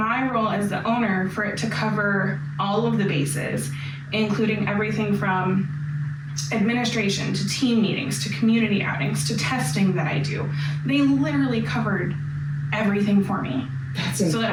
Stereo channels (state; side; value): identical; both; correlation 1.00